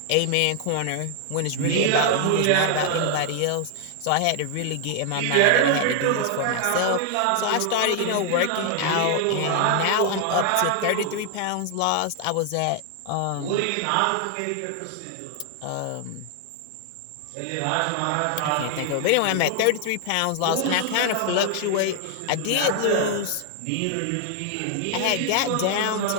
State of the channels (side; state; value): both; different; correlation 0.00